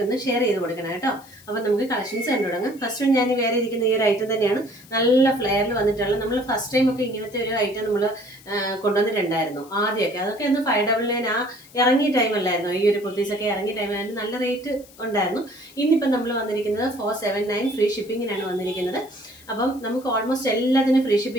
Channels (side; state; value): left; noise; hiss, 24 dB below the sound